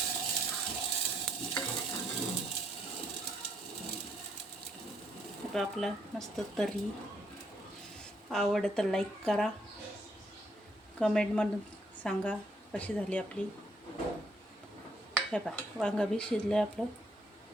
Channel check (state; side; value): normal; both; correlation 0.71